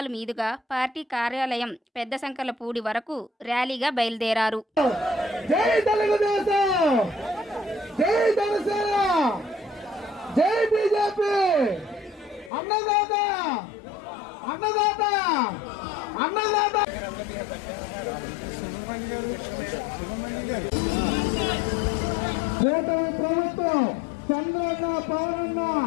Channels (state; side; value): drops out; right; at 12.5 s